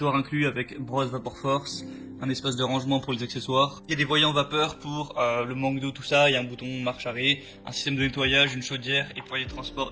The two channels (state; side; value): identical; both; correlation 1.00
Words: inclus avec brosse Vapor Force, un espace de rangement pour les accessoires. Il y a des voyants vapeur pour le manque d'eau, tout ça. Il y a un bouton marche arrêt, un système de nettoyage, une chaudière et poignée de